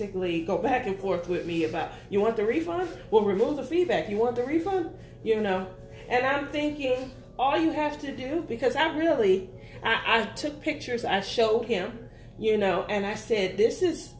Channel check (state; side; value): identical; both; correlation 1.00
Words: go back and forth with me about, you want the refund? Well, remove the feedback. You want the refund? And I'm thinking, all you have to do, because I took pictures, I showed him, and I said, this is